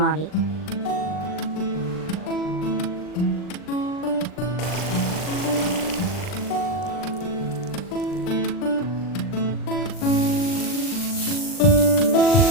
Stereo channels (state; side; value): late; right; 39 ms